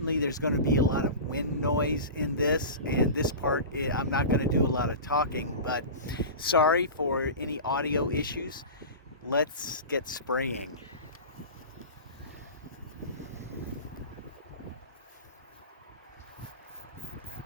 there's going to be a lot of wind noise in this, and this part I'm not going to do a lot of talking, but sorry for any audio issues. Let's get spraying.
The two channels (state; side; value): inverted; both; correlation -0.30